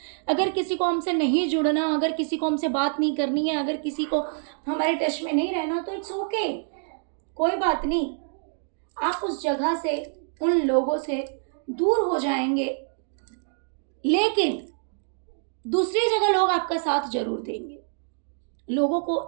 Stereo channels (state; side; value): silent; left; digital silence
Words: अगर किसी को हमसे नहीं जुड़ना, अगर किसी को हमसे बात नहीं करनी है, अगर किसी को हमारे टच में नहीं रहना, तो इट्स ओके, कोई बात नहीं। आप उस जगह से, उन लोगों से दूर हो जाएंगे, लेकिन दूसरी जगह लोग आपका साथ जरूर देंगे। लोगों को